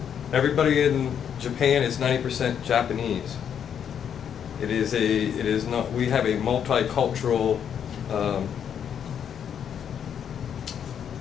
Everybody in Japan is 90% Japanese. It is not. We have a multicultural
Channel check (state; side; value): quieter; right; 8.4 dB